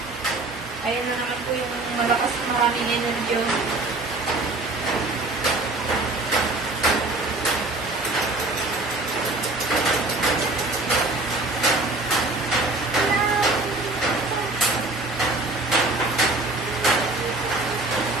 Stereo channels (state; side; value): quieter; left; 3.0 dB